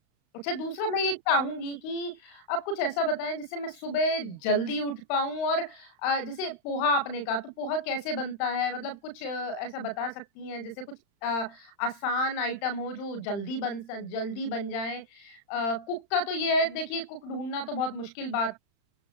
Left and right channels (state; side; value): late; right; 35 ms